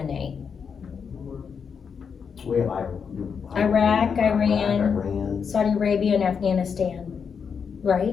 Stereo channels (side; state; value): right; quieter; 6.4 dB